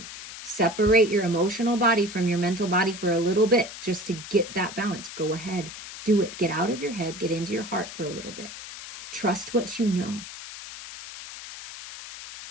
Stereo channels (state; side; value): noise; left; hiss, 12 dB below the sound